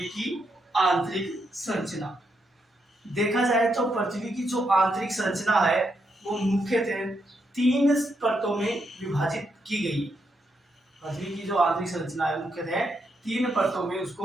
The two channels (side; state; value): both; normal; correlation 0.80